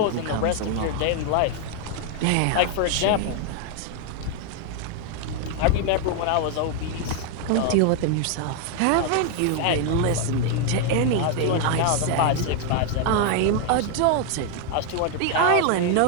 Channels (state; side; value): different; both; correlation 0.00